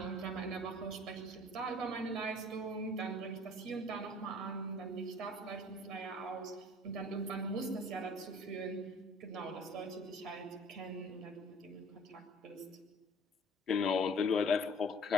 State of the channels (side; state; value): both; normal; correlation 0.52